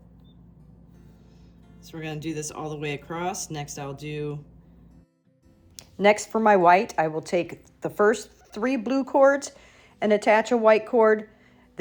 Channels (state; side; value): identical; both; correlation 1.00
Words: So we're going to do this all the way across. Next for my white, I will take the first 3 blue cords and attach a white cord,